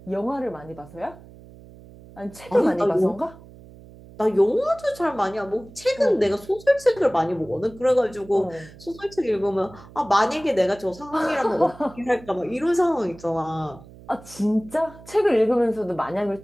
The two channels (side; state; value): right; noise; hum, 20 dB below the sound